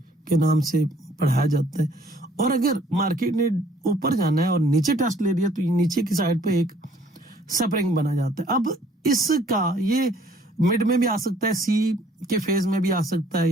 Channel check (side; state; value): both; normal; correlation 0.60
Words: کے نام سے پڑھایا جاتا ہے. اور اگر مارکیٹ نے اوپر جانا ہے اور نیچے ٹیسٹ لے لیا تو نیچے کی سائڈ پہ ایک سپرنگ بنا جاتا ہے. اب اس کا یہ مڈ میں بھی آ سکتا ہے, سی کے فیز میں بھی آ سکتا ہے,